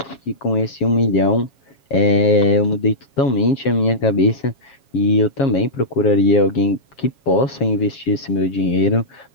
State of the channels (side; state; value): right; late; 7.3 ms